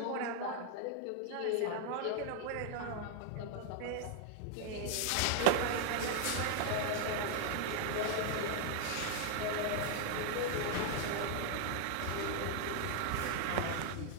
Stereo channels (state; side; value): different; both; correlation 0.00